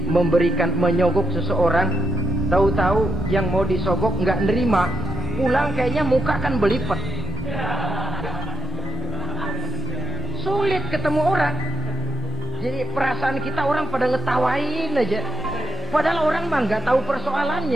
menyogok seseorang, tahu-tahu yang mau disogok nggak nerima, pulang kayaknya muka kan belipet. Sulit ketemu orang. Jadi perasaan kita orang pada ngetawain aja. Padahal orang mah nggak tahu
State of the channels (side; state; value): both; normal; correlation 0.79